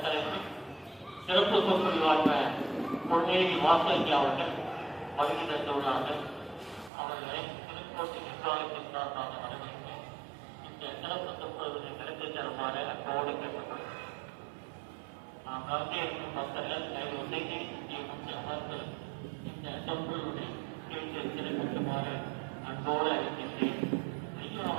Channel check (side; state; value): left; drops out; at 6.9 s